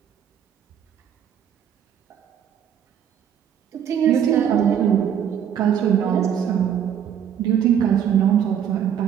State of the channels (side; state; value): left; quieter; 8.9 dB